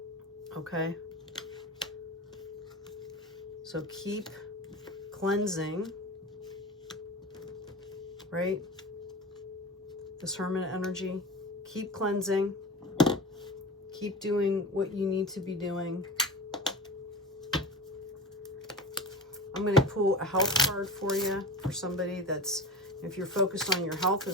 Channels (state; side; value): normal; both; correlation 0.30